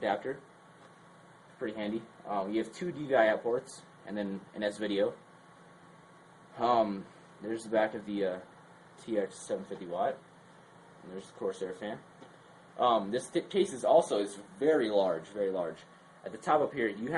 Pretty handy. You have 2 DVI out ports and then an S-Video. There's the back of the TX750W, and there's the Corsair fan. This case is very large, very large. At the top up here, you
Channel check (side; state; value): both; identical; correlation 1.00